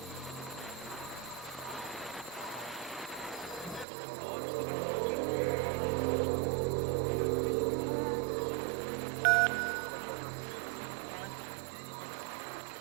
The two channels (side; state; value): left; drops out; at 3.9 s